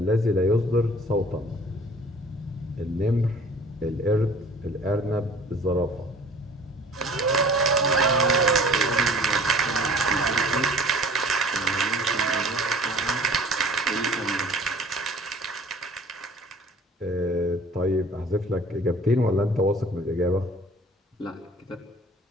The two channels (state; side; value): normal; both; correlation 0.48